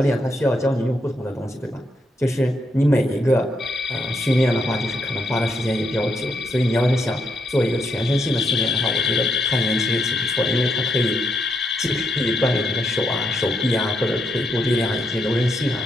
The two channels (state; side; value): normal; both; correlation 0.78